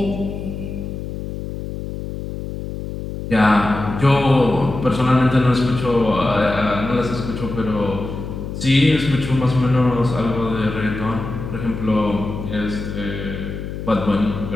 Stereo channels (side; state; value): left; noise; hum, 7 dB below the sound